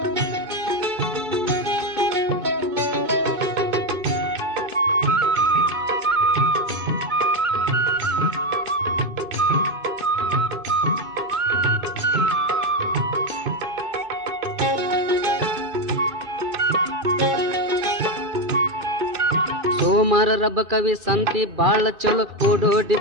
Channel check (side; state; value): left; late; 2.6 ms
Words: ಸೋಮಾರ ರಬ್ಬ ಕವಿ ಸಂತಿ ಬಾಳ ಚಲೋ ಓಡೋಡಿ